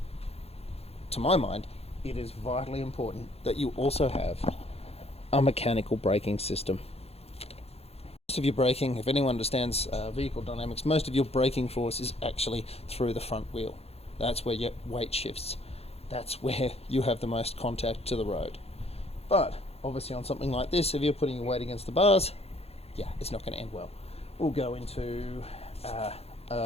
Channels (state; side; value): late; right; 0.29 ms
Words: to my mind, it is vitally important that you also have a mechanical braking system. Most of your braking, if anyone understands vehicle dynamics, most of your braking force is actually through the front wheel. That's where your weight shifts. That's where you have the most contact to the road. But obviously on something like this, if you're putting your weight against the bars, yeah, it's not going to end well. We'll go into